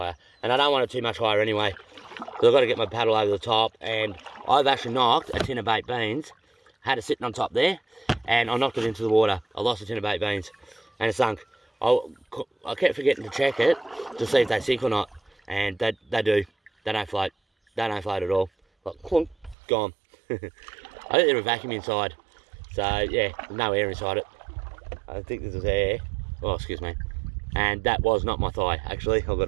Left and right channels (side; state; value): left; drops out; at 19.6 s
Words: And I don't want it too much higher anyway. So I've got to get my paddle over the top. And I've actually knocked a tin of baked beans. Had it sitting on top there. And I knocked it into the water. I lost a tin of baked beans. And it sunk. I kept forgetting to check it to see if they sink or not. And they do. They don't float. They don't float at all. Like, clunk, gone. I think there's a vacuum inside. So, yeah, there's no air inside it. I think this is air. Oh, excuse me. And that was not my thigh, actually, I've got